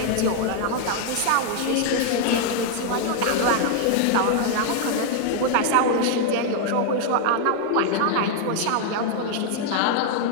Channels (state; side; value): different; both; correlation 0.00